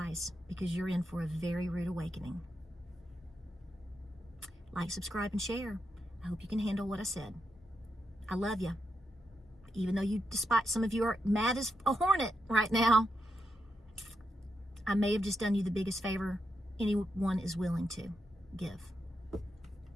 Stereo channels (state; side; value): normal; both; correlation 0.85